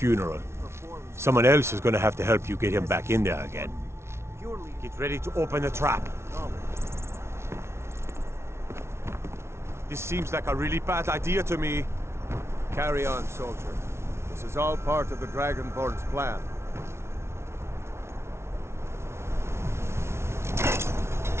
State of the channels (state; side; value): late; left; 0.13 ms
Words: Someone else is gonna have to help you get him back in there again. Get ready to open the trap. This seems like a really bad idea to me. Carry on, soldier. This is all part of the Dragonborn's plan.